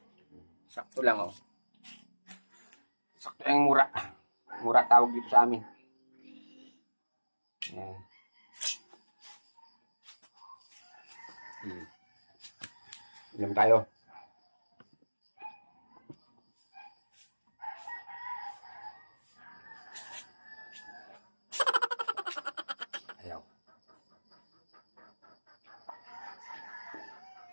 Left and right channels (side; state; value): both; inverted; correlation -1.00